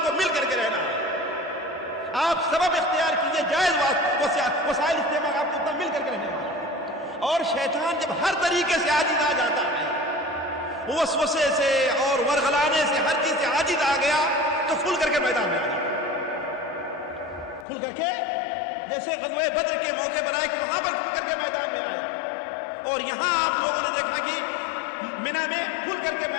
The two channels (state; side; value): drops out; right; at 17.7 s